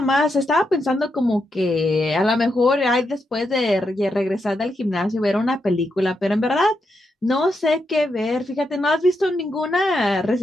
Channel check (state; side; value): normal; both; correlation 0.83